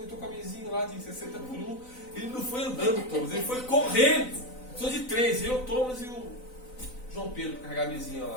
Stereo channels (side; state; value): right; late; 4.0 ms